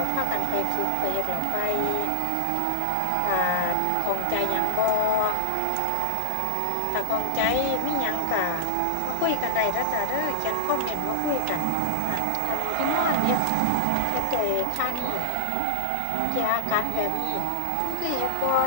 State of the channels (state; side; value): different; both; correlation 0.00